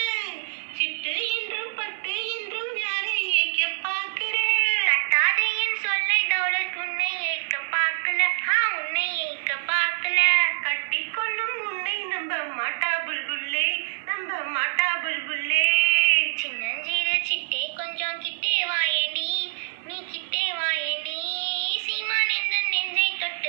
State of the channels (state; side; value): silent; left; digital silence